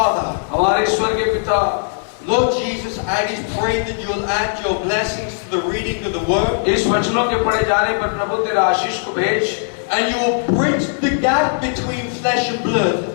हमारे स्वर्गीय पिता, Lord Jesus, I just pray that you'll add your blessings to the reading of the word, इस वचनों के पढ़े जाने पर प्रभु तेरा आशीष को भेज, and you will bridge the gap between flesh and blood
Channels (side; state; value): right; silent; 62 dB below the other